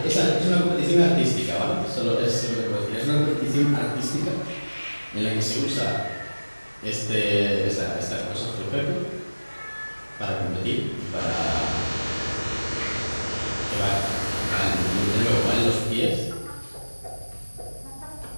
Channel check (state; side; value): inverted; both; correlation -1.00